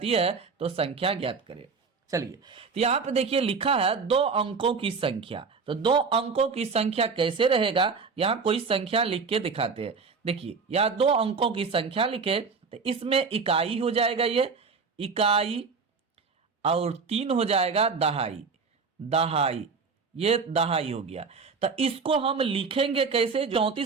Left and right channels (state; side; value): quieter; left; 5.0 dB